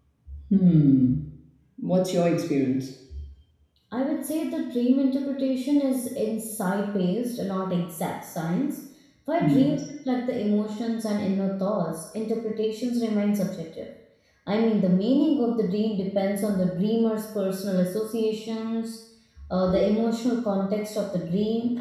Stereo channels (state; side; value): identical; both; correlation 1.00